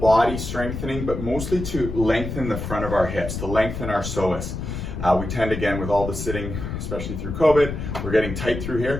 strengthening, but mostly to lengthen the front of our hips, to lengthen our psoas. We tend, again, with all the sitting, especially through COVID, we're getting tight through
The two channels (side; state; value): left; noise; rumble, 6 dB below the sound